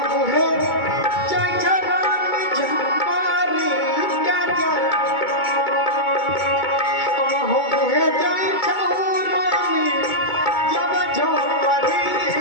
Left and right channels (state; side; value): late; right; 2.2 ms